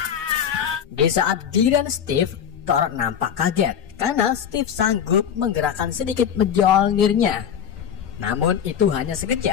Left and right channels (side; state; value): right; quieter; 8.6 dB